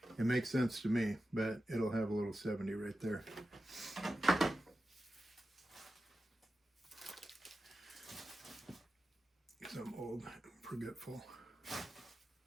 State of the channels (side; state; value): both; normal; correlation 0.92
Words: It makes sense to me, but it'll have a little 70 right there. Because I'm old and forgetful.